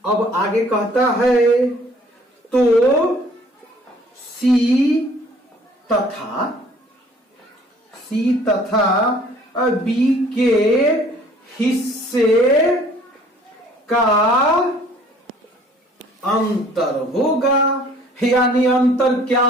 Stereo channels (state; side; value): normal; both; correlation 0.55